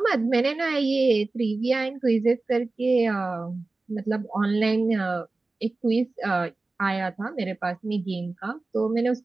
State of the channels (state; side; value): quieter; left; 3.4 dB